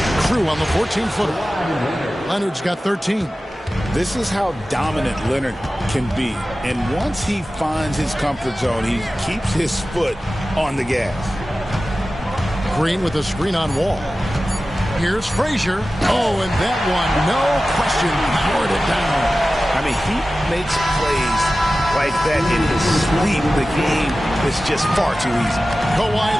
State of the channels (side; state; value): both; normal; correlation 0.95